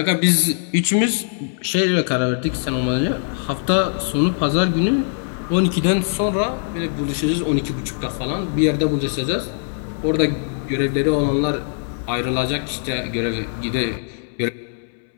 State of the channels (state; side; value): silent; right; 63 dB below the other